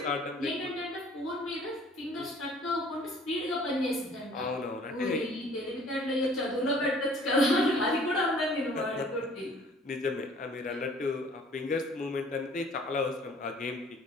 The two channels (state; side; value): normal; both; correlation 0.54